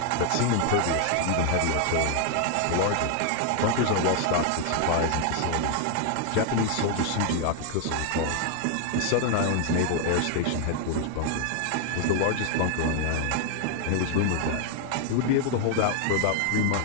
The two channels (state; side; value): different; both; correlation 0.00